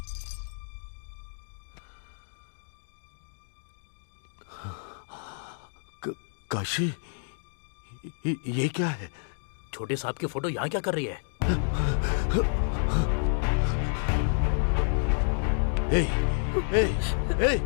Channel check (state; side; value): silent; right; digital silence